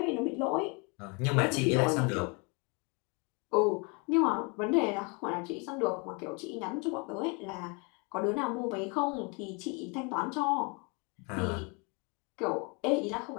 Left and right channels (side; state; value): right; quieter; 31.8 dB